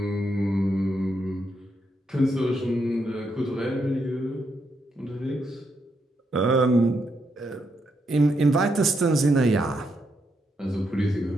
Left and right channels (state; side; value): normal; both; correlation 0.80